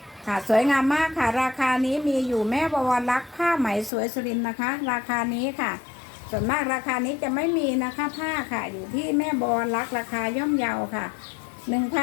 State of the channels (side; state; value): right; drops out; at 3.9 s